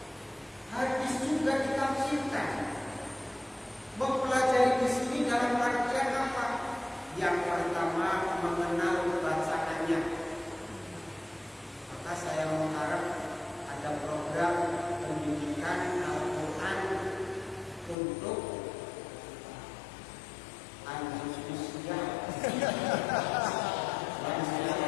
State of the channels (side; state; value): right; drops out; at 17.9 s